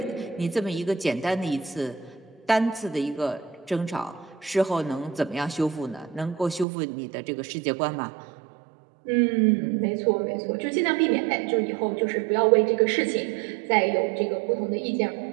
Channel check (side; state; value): left; drops out; at 6.7 s